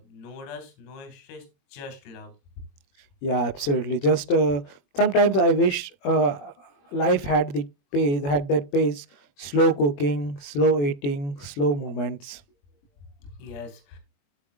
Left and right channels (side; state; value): right; late; 21 ms